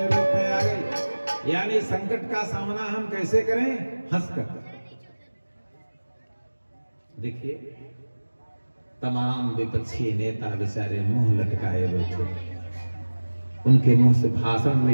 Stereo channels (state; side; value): inverted; both; correlation -1.00